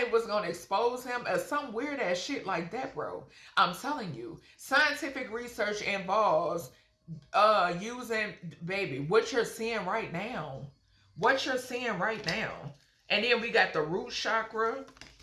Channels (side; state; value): both; identical; correlation 1.00